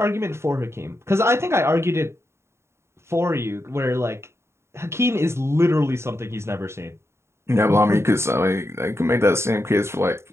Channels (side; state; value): left; late; 0.13 ms